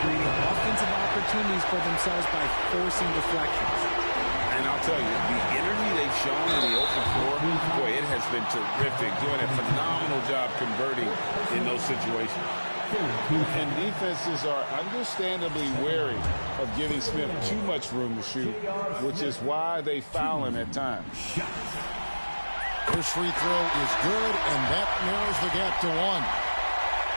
creating offensive opportunities for themselves by forcing deflections. And I'll tell you, the energy they've shown in the open floor, boy, it has been terrific, doing a phenomenal job converting in those situations. And defenses are understandably wary of giving Smith too much room to shoot, which is why they foul him at times. His free throw is good, and that narrows the gap to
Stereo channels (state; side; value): inverted; both; correlation -1.00